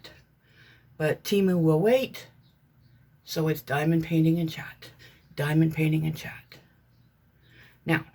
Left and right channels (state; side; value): identical; both; correlation 1.00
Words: But Temu will wait. So it's diamond painting and chat. Diamond painting and chat. Now,